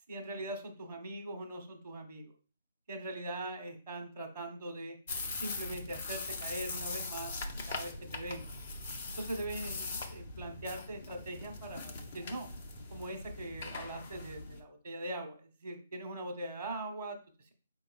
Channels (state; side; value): inverted; both; correlation -0.64